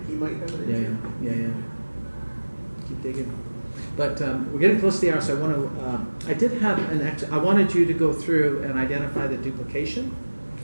He might have an yeah. Keep digging. But we're getting close to the hour, so I want to. I did have I wanted you to go through and identify the duplication.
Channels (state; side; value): inverted; both; correlation -1.00